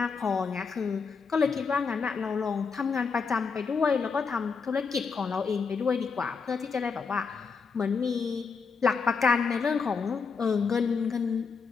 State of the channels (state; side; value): quieter; right; 5.3 dB